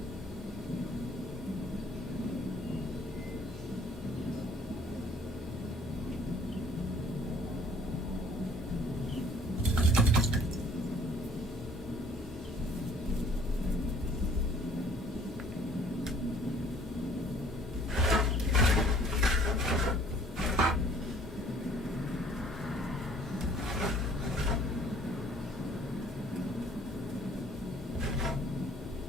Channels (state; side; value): normal; both; correlation 0.56